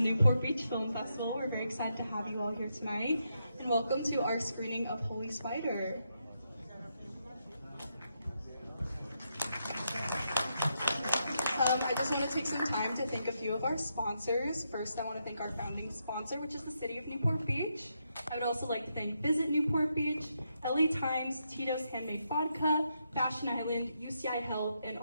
Beach Film Festival. We're very excited to have you all here tonight, and welcome to our screening of Holy Spider. I just want to take some time to thank a few of our sponsors. First, I want to thank our founding sponsor, which is the City of Newport Beach. I would also like to thank Visit Newport Beach, LA Times, Tito's Handmade Vodka, Fashion Island, UCI Health, and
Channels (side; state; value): both; inverted; correlation -0.81